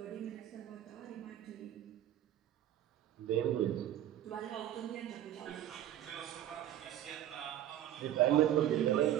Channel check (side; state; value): left; quieter; 12.0 dB